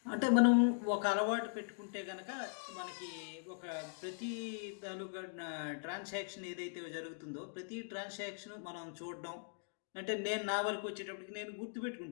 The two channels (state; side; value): silent; right; digital silence